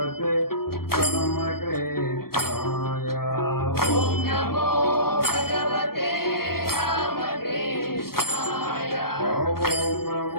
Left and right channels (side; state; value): right; late; 0.94 ms